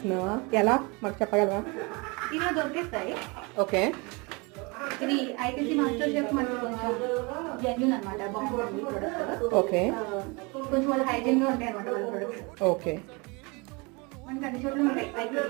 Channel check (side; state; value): left; quieter; 28.4 dB